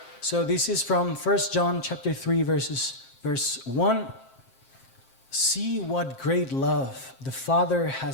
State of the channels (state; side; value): late; right; 7.6 ms